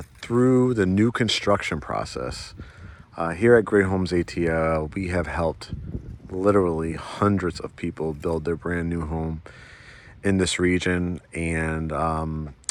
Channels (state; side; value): identical; both; correlation 1.00